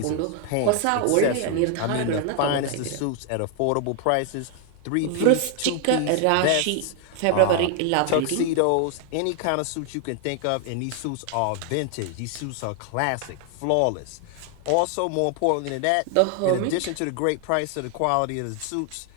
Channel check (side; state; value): both; different; correlation 0.00